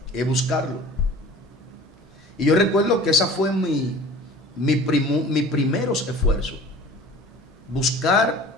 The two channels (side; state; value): both; normal; correlation 0.43